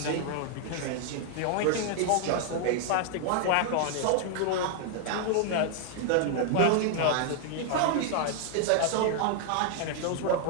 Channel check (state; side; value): different; both; correlation 0.00